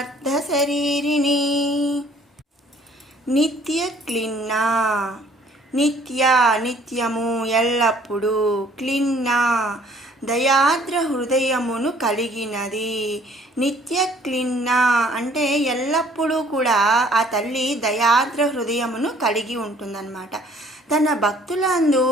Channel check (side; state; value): both; normal; correlation 0.58